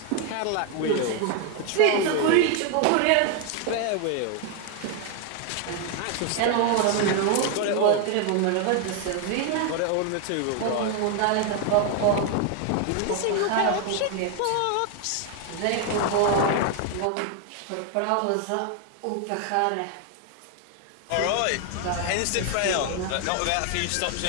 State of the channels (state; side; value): different; both; correlation 0.01